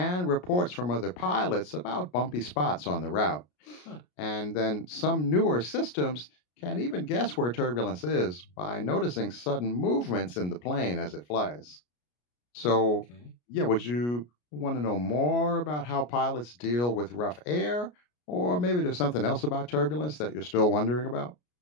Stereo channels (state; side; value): late; right; 33 ms